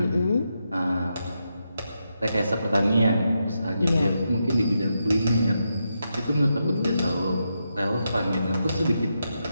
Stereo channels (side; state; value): both; inverted; correlation -0.85